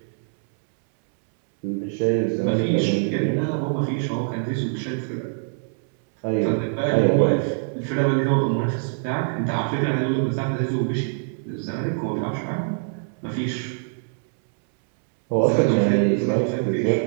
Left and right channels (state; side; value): silent; left; 63 dB below the other